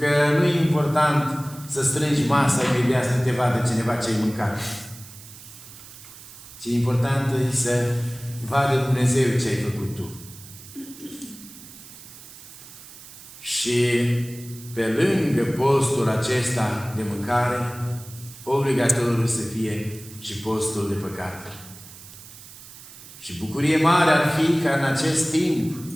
nu e important să strângi masa imediat să te vadă cineva ce ai mâncat. Ce important e să vadă Dumnezeu ce ai făcut tu. Și pe lângă postul acesta de mâncare, obligatoriu să fie și postul de păcat. Și bucurie mare ar fi ca în acest timp,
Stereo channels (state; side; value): noise; right; hiss, 17 dB below the sound